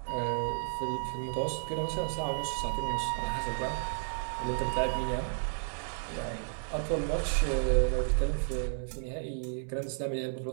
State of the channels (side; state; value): left; silent; digital silence